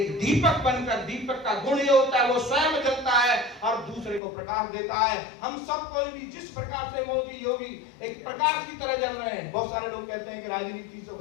दीपक बनकर, दीपक का गुण ये होता है वो स्वयं जलता है और दूसरे को प्रकाश देता है। हम सब कोई भी जिस प्रकार से मोदी योगी एक प्रकाश की तरह जल रहे हैं। बहुत सारे लोग कहते हैं कि राजनीति से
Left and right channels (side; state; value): right; drops out; at 4.2 s